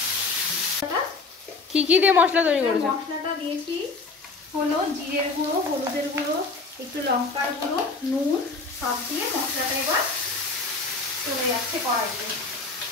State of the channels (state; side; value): quieter; right; 3.9 dB